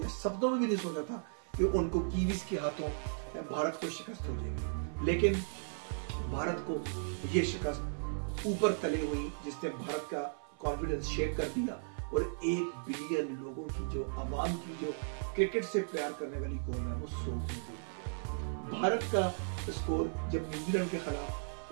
या सपनों में भी नहीं सोचा था कि उनको कीवीज के हाथों भारत को शिकस्त हो जाएगी, लेकिन भारत को ये शिकस्त ऊपर तले हुई जिसने भारत का कॉन्फिडेंस शेक कर दिया और 1 बिलियन लोगों की जो आवाम की जो क्रिकेट से प्यार करने वाली कौम है वो सो गई। भारत का स्कोर जब न्यूजीलैंड के खिलाफ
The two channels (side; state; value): left; silent; 54 dB below the other